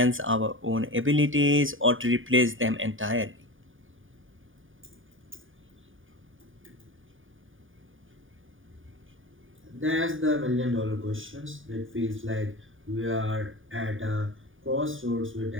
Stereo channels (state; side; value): late; left; 0.58 ms